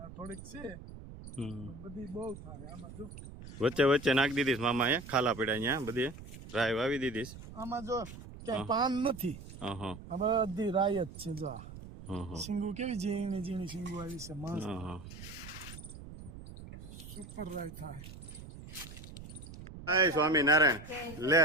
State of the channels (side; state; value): right; noise; rumble, 14 dB below the sound